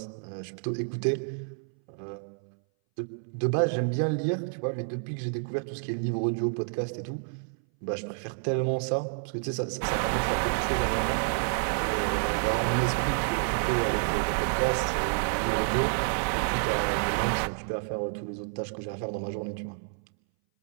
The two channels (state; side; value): silent; left; 58 dB below the other